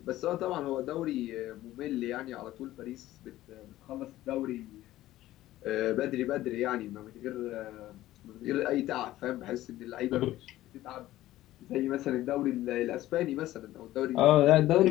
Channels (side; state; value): right; quieter; 15.2 dB